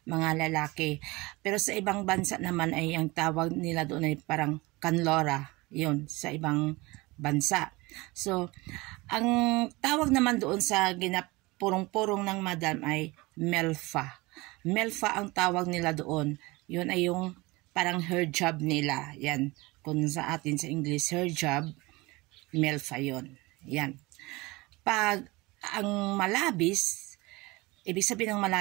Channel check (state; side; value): quieter; left; 22.8 dB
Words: mga lalaki. Pero sa ibang bansa naman ay ang tawag nila doon ay parang kanlora, yun, sa ibang bansa. So, ang tawag naman doon sa purong-purong ng madam ay melfa. Melfa ang tawag nila doon. Yun ay yung parang hijab nila. Yan. Kung sa atin sa English, hijab, melfa yun. Yan. Pag ang malabis, ibig sabihin ng